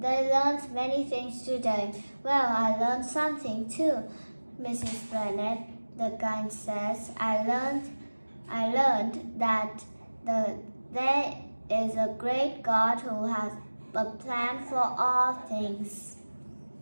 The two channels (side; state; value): both; inverted; correlation -1.00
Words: learned many things today. Well, I learned something too, Mrs. Bennet. The guide says. I learned that there is a great God who has a plan for all things.